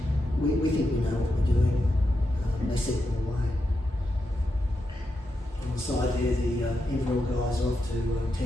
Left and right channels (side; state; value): both; normal; correlation 0.86